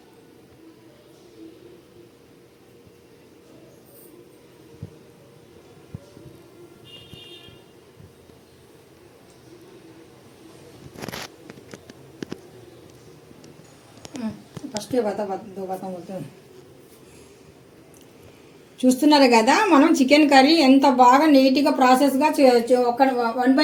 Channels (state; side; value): identical; both; correlation 1.00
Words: ఫస్ట్ చూస్తున్నారు కదా మనం చికెన్ కర్రీ ఎంత బాగా నీట్గా ప్రాసెస్గా ఒక 1